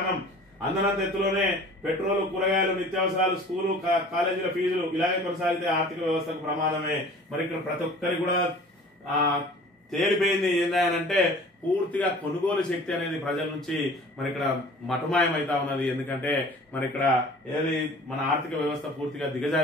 అందనంత ఎత్తులోనే పెట్రోల్, కూరగాయలు, నిత్యావసరాలు, స్కూలు కాలేజీల ఫీజులు ఇలాగే కొనసాగితే ఆర్థిక వ్యవస్థకు ప్రమాదమే. మరి ఇక్కడ ప్రతి ఒక్కరికి కూడా తేలిపోయింది ఏందంటే పూర్తిగా కొనుగోలు శక్తి అనేది ప్రజల నుంచి మరి ఇక్కడ మటుమాయం అవుతా ఉన్నది. ఎందుకంటే మరి ఇక్కడ ఏది మన ఆర్థిక వ్యవస్థ పూర్తిగా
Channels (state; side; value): normal; both; correlation 0.46